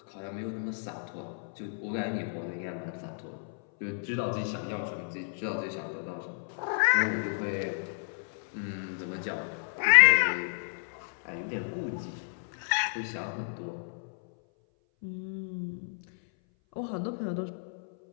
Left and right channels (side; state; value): right; silent; 56 dB below the other